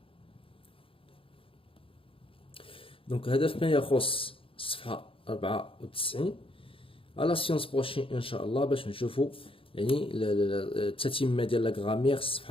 Donc هذا فيما يخص الصفحة 94. على السيونس بروشين ان شاء الله باش نشوفوا يعني التتمة ديال لا غرامير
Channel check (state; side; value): late; right; 0.26 ms